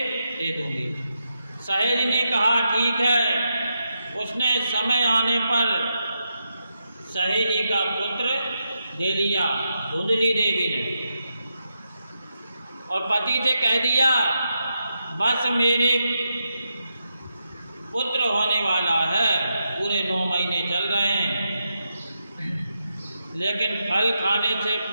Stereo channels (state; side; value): inverted; both; correlation -0.85